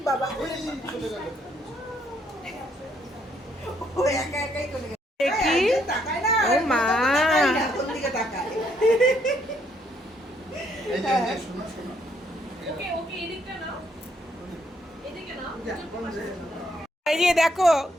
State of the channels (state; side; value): normal; both; correlation 0.71